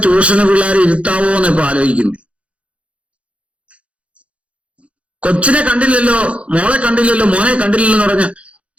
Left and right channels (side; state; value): left; late; 0.062 ms